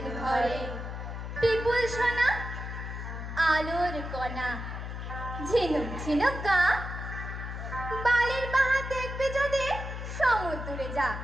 ঘরে। পিপুল সোনা, আলোর কণা, ঝিনুক ঝিনুক গা, বালির বাহা দেখবি যদি সমুদ্রে যা।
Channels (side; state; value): left; noise; hum, 7 dB below the sound